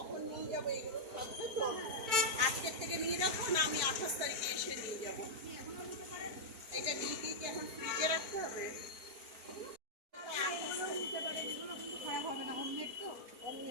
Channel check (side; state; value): left; late; 4.5 ms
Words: নিয়ে যাবো এগুলো থাকবে তো আজকের থেকে নিয়ে রাখবো না, আমি 28 তারিখে এসে নিয়ে যাবো। এটা নিয়ে গিয়ে কি এখন ফ্রিজে রাখতে হবে? খারাপ হবে না, হোমমেড তো।